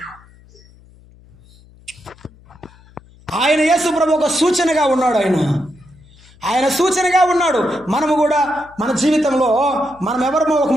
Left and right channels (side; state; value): left; noise; hum, 26 dB below the sound